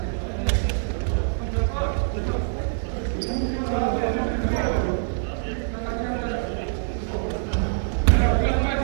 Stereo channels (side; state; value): left; silent; 62 dB below the other